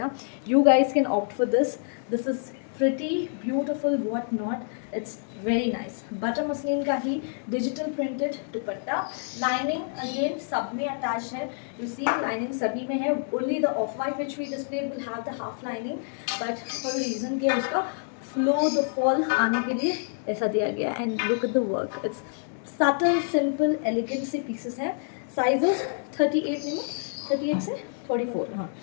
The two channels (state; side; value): silent; right; digital silence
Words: you guys can opt for this. This is pretty beautiful, what not. It's very nice. Butter muslin का ही digital printed dupatta. Lining again सब में अटैच है. यू सी लाइनिंग सभी में है. Only the off white which we display will have the half lining, but for reason के उसका फ्लो द फॉल आने के लिए ऐसा दिया गया. And look at the work. It's subtle, simple, elegant से पीसेस हैं. साइजेस 38 में, 38 से 44. हाँ,